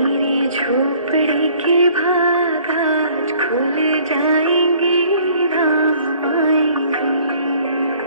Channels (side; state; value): both; inverted; correlation -0.56